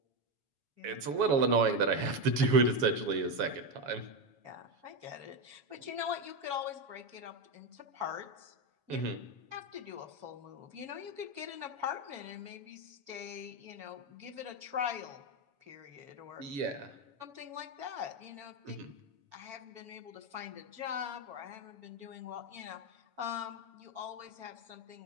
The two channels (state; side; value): late; left; 7.2 ms